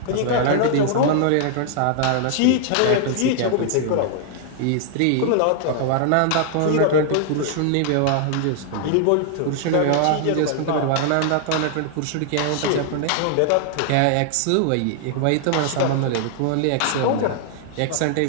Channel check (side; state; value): both; different; correlation 0.00